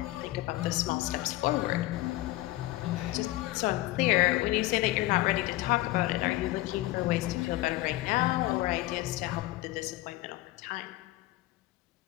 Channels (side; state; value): right; quieter; 18.1 dB